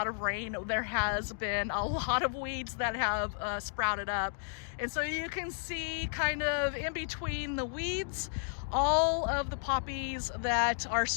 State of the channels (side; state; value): right; silent; digital silence